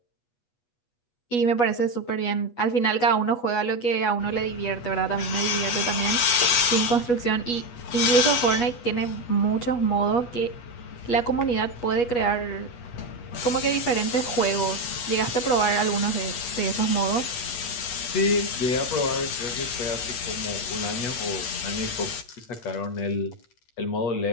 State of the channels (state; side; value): late; right; 8.3 ms